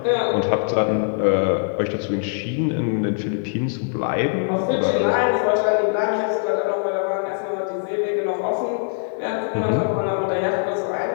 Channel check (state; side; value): silent; right; digital silence